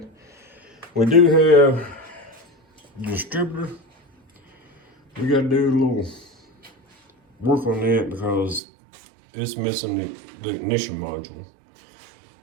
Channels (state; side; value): drops out; left; at 8.6 s